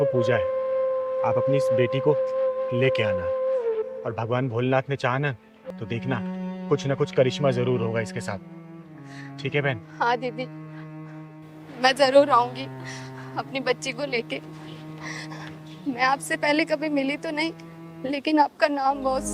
पूजा है, आप अपनी इस बेटी को लेके आना। और भगवान भोलेनाथ ने चाहा ना तो देखना कुछ ना कुछ करिश्मा जरूर होगा इसके साथ। ठीक है बहन? हाँ दीदी, मैं जरूर आऊंगी अपनी बच्ची को लेके। मैं आपसे पहले कभी मिली तो नहीं, लेकिन आपका नाम बहुत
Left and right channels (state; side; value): identical; both; correlation 1.00